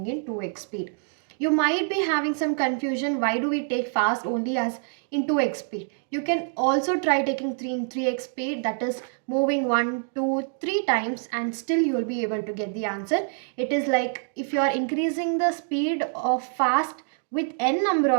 in 2x speed. You might be having some confusion, why do we take fast only as in 2x speed? You can also try taking 3 in 3x speed, that is moving 1, 2, 3 times, and still you will be able to get the answer. It is like if you are increasing the speed of fast with n number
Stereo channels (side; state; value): left; silent; 61 dB below the other